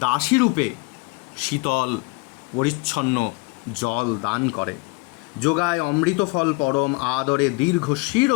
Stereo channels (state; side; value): quieter; right; 26.2 dB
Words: দাসী রূপে শীতল পরিচ্ছন্ন জল দান করে। যোগায় অমৃত ফল পরম আদরে দীর্ঘ